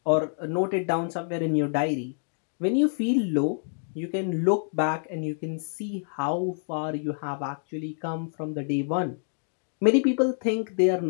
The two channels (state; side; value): silent; right; digital silence